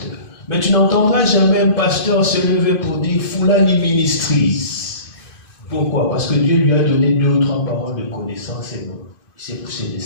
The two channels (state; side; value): late; right; 2.5 ms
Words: Mais tu n'entendras jamais un pasteur se lever pour dire Fulani Ministries. Pourquoi? Parce que Dieu lui a donné 2 ou 3 paroles de connaissance et non. Il s'est poussé